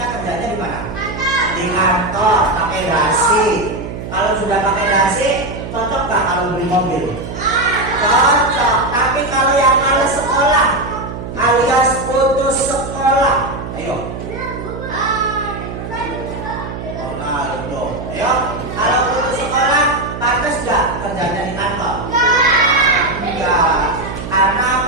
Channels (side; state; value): right; noise; hum, 8 dB below the sound